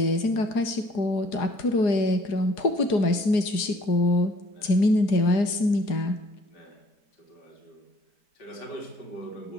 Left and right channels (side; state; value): right; late; 4.8 ms